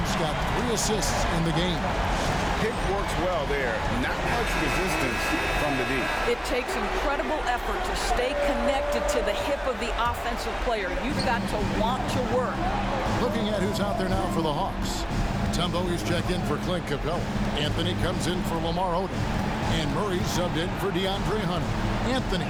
got 3 assists in the game. Pick works well there. Not much resistance from the D. It takes incredible effort to stay connected to the hip of the offensive player. You've got to want to work. Looking at who's out there now for the Hawks. Tumbo is checked in for Clint Capella. Anthony comes in for Lamar Odom. And Murray subbed in for DeAndre Hunter. Anthony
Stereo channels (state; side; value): identical; both; correlation 1.00